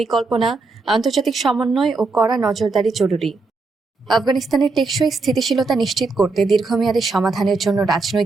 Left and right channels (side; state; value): left; quieter; 3.8 dB